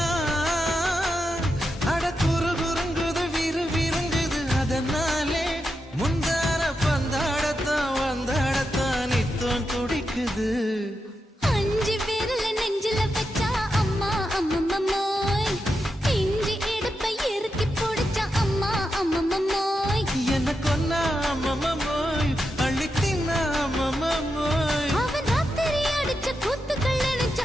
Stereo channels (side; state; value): both; normal; correlation 0.87